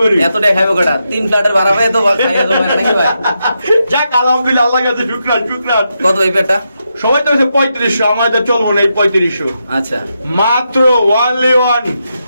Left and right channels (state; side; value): inverted; both; correlation -0.84